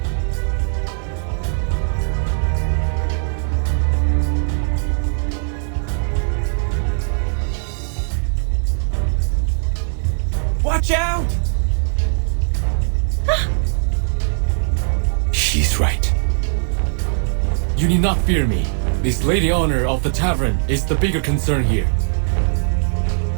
Watch out! She's right. You need not fear me. This lady honor of the tavern is the bigger concern here.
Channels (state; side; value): silent; left; digital silence